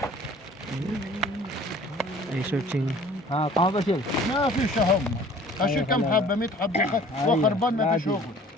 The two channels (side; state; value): both; normal; correlation 0.50